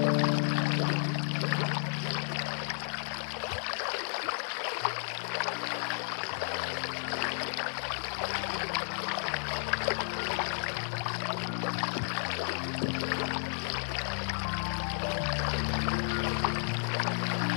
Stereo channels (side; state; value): right; silent; digital silence